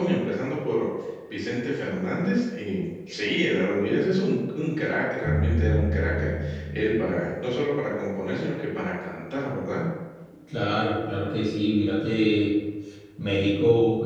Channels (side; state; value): both; identical; correlation 1.00